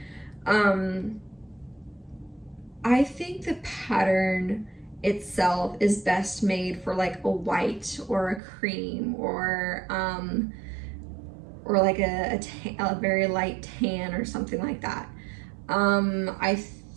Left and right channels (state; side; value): drops out; left; at 8.4 s